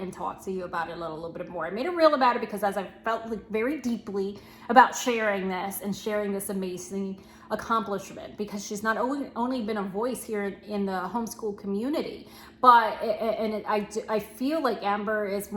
talk to you about it a little bit more. I made a reel about it because as I felt like very deeply about sharing this and sharing this amazing accomplishment, because she's not only been a voice here in the homeschool community, but I feel like Amber is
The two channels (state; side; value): identical; both; correlation 1.00